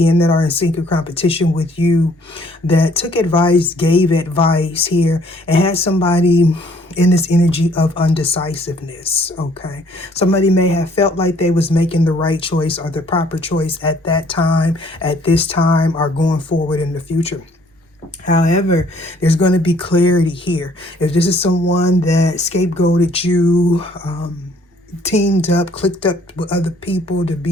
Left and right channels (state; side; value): normal; both; correlation 0.61